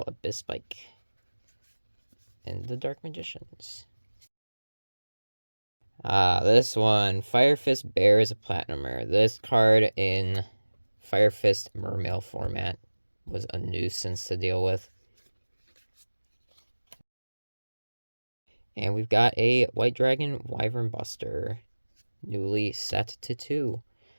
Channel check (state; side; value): inverted; both; correlation -1.00